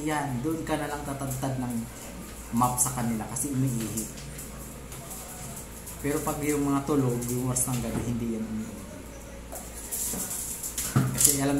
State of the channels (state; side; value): identical; both; correlation 1.00